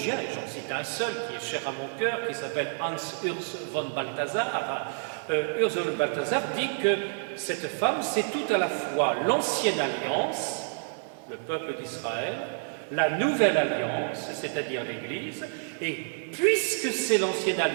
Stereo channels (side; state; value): left; silent; digital silence